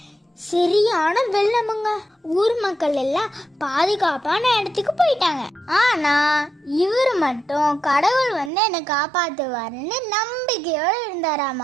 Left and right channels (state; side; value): drops out; left; at 8.5 s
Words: சரியான வெள்ளமுங்க. ஊர் மக்கள் எல்லாம் பாதுகாப்பான இடத்துக்கு போயிட்டாங்க. ஆனா இவர் மட்டும் கடவுள் வந்து என்னை காப்பாத்துவாருன்னு நம்பிக்கையோட